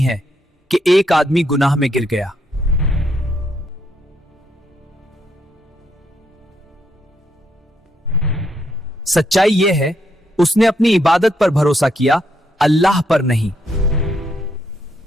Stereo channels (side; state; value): both; normal; correlation 0.76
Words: कि एक आदमी गुनाह में गिर गया। सच्चाई यह है, उसने अपनी इबादत पर भरोसा किया, अल्लाह पर नहीं।